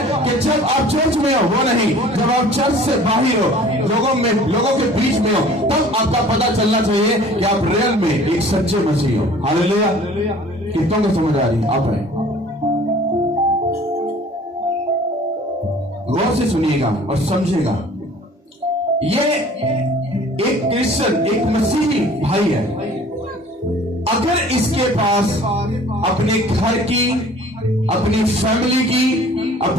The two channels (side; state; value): both; normal; correlation 0.49